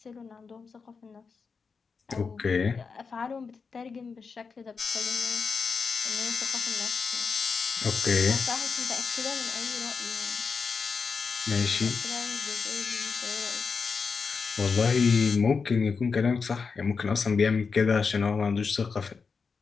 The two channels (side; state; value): right; quieter; 5.2 dB